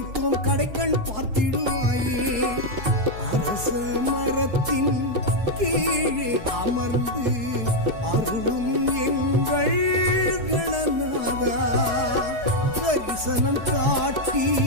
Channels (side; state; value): left; late; 4.7 ms